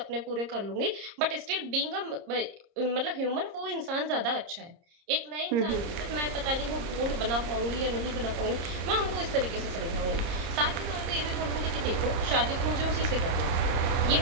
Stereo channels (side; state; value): left; late; 30 ms